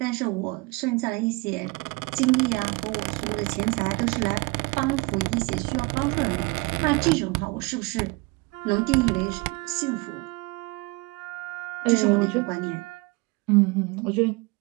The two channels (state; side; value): quieter; left; 26.0 dB